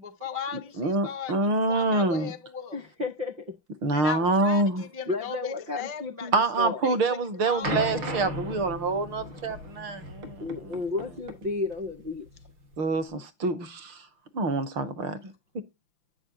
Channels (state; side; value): late; left; 5.9 ms